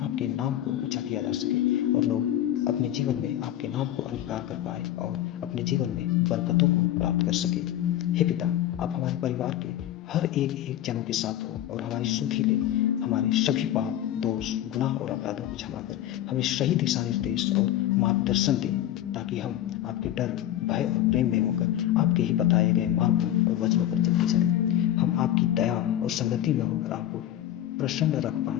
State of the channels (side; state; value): right; quieter; 12.4 dB